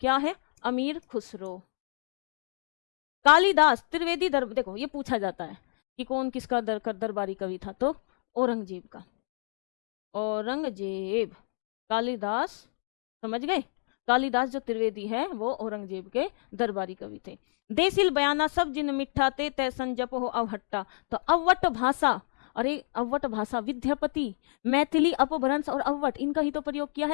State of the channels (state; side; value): silent; right; digital silence